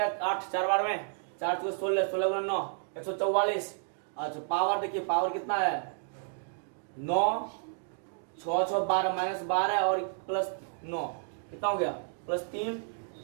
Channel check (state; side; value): silent; left; digital silence